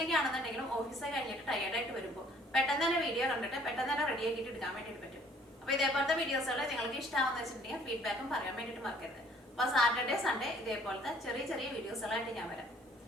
ആണെന്നുണ്ടെങ്കിലും ഓഫീസൊക്കെ കഴിഞ്ഞിട്ട് ടയേർഡായിട്ട് വരുമ്പോൾ പെട്ടെന്ന് തന്നെ വീഡിയോ കണ്ടിട്ട് പെട്ടെന്ന് തന്നെ റെഡി ആക്കിയിട്ട് എടുക്കാൻ വേണ്ടിയിട്ട് പറ്റും. അപ്പോൾ ഇതേപോലത്തെ വീഡിയോസുകൾ നിങ്ങൾക്ക് ഇഷ്ടമാണെന്ന് വെച്ചിട്ടുണ്ടെങ്കിൽ ഫീഡ്ബാക്കും പറയാൻ വേണ്ടിയിട്ട് മറക്കരുത്. അപ്പോൾ സാറ്റർഡേ സൺഡേ ഇതേപോലത്തെ ചെറിയ ചെറിയ വീഡിയോസുകളായിട്ട് ഞാൻ വരാം.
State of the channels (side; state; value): both; normal; correlation 0.58